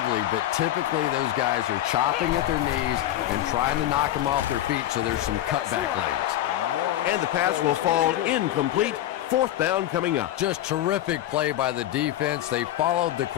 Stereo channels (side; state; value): right; quieter; 13.2 dB